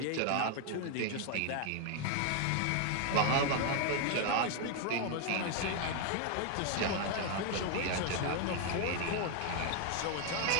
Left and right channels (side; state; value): both; different; correlation 0.00